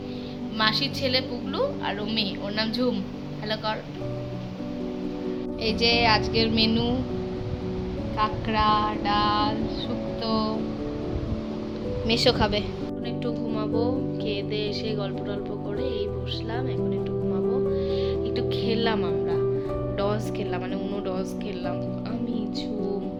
মাসির ছেলে পুগলু, আর ও মেয়ে, ওর নাম ঝুম। হ্যালো কর। এই যে আজকের মেনু, কাঁকড়া, ডাল, শুক্তো। মেশো খাবে। এখন একটু ঘুমাবো, খেয়ে দিয়ে এসে গল্প টল্প করে এই বসলাম, এখন একটু ঘুমাবো। একটু খেললাম, আমরা ডস খেললাম, মানে উনো ডস খেললাম, আমি ঝুম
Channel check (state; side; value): identical; both; correlation 1.00